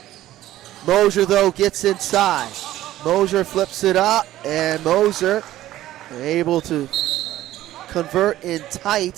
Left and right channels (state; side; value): quieter; left; 14.4 dB